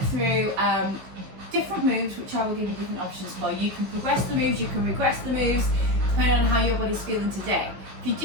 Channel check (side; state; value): left; late; 16 ms